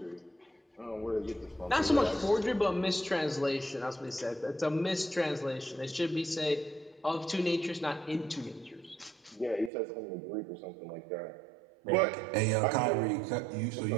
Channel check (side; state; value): left; drops out; at 9.7 s